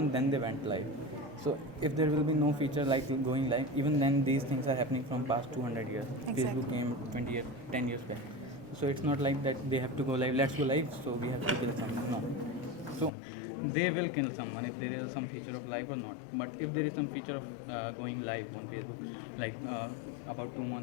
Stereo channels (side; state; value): right; drops out; at 13.1 s